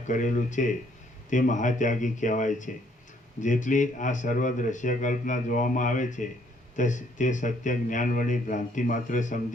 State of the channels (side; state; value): both; normal; correlation 0.66